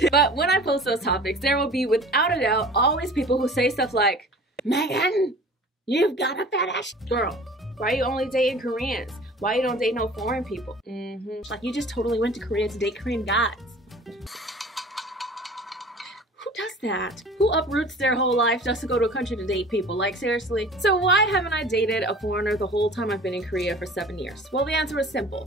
But when I post those topics, there will be, without a doubt, always people who say stuff like, Megan, you've got a fat ass. Girl, why are you only dating Koreans? Why you don't date no foreign people? Like, you just totally went to Korea to date Korean guys. Who does that? Who uproots their whole life just to go to a country to date people? Like, seriously? So why haven't I dated a foreigner the whole time I've been in Korea for 7 years? Well, the answer is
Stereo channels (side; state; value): both; normal; correlation 0.44